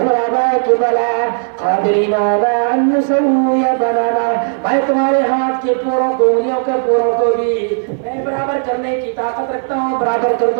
کہ بلا قادرین علی ان نسوی بنانا، میں تمہارے ہاتھ کے پوروں کو، انگلیوں کے پوروں کو بھی میں برابر کرنے کی طاقت رکھتا ہوں، برابر کر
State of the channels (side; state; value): left; silent; digital silence